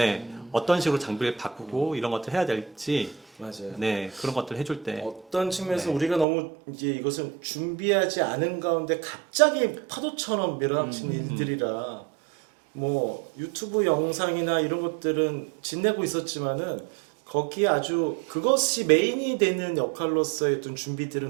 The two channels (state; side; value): drops out; left; at 6.2 s